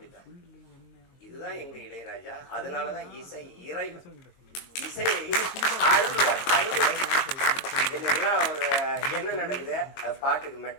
இதுதான் எங்க இளையராஜா. அதனாலதான் இசை இறைவன். இசை இன்னைக்கெல்லாம் ஒரு என்ன நடக்குது, அது பாட்டுக்கு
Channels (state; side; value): late; right; 22 ms